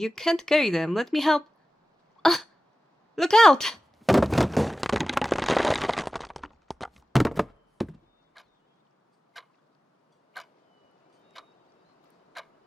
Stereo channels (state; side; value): normal; both; correlation 0.96